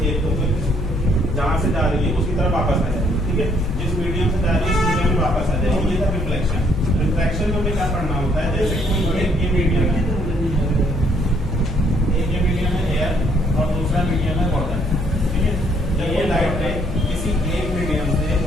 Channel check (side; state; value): left; noise; hum, 6 dB below the sound